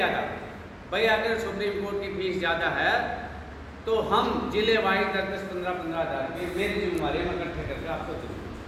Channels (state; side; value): identical; both; correlation 1.00